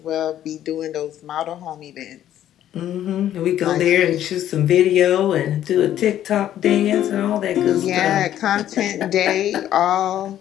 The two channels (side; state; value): right; quieter; 11.6 dB